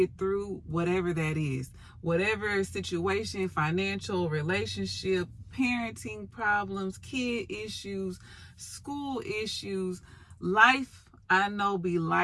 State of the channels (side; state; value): both; identical; correlation 1.00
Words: through whatever that is. Whatever situation, financial, relationship, parenting problems, kid issues, school issues, life, I know be